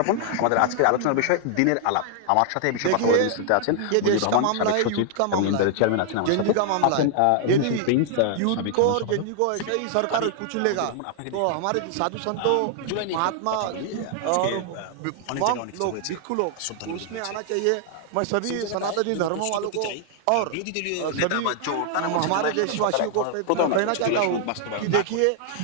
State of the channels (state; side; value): different; both; correlation 0.00